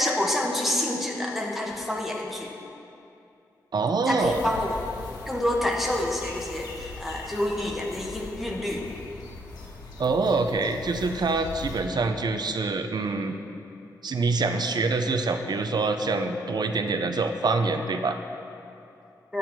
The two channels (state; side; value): normal; both; correlation 0.67